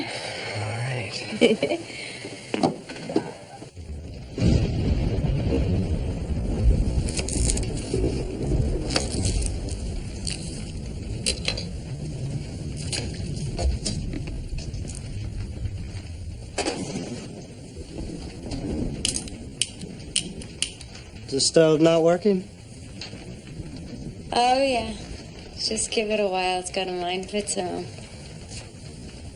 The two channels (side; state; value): both; identical; correlation 1.00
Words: All right. Is the stove not working? Oh, yeah. Just give it a while. It's got a mind of its own.